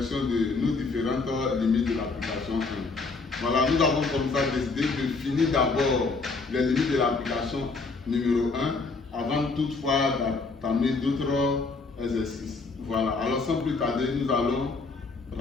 de nos différentes limites de l'application 1. Voilà, nous avons comme ça décidé de finir d'abord les limites de l'application numéro 1 avant toutefois d'entamer d'autres exercices. Voilà, alors sans plus tarder, nous allons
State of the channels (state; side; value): quieter; right; 4.0 dB